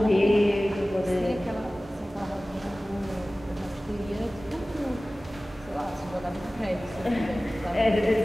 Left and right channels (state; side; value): normal; both; correlation 0.97